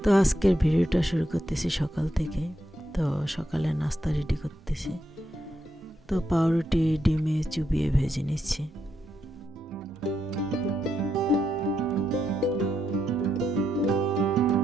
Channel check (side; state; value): both; normal; correlation 0.81